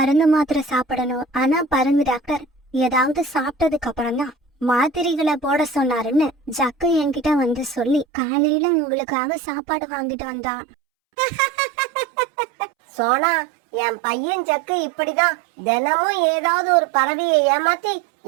மாத்திரை சாப்பிடணும். ஆனா பறந்து டாக்டர் ஏதாவது சாப்பிட்டதுக்கு அப்புறம் தான் மாத்திரைகளை போட சொன்னாருன்னு ஜக்கு என்கிட்ட வந்து சொல்லி காலையில உங்களுக்காக சாப்பாடு வாங்கிட்டு வந்தான். சோனா, என் பையன் ஜக்கு இப்படிதான் தினமும் ஏதாவது ஒரு பறவையை ஏமாத்தி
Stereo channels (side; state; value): left; drops out; at 8.1 s